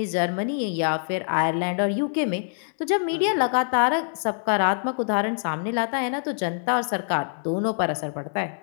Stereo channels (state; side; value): silent; right; digital silence